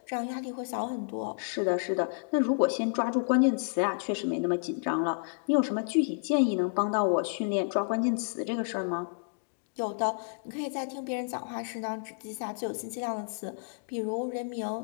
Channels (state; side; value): silent; right; digital silence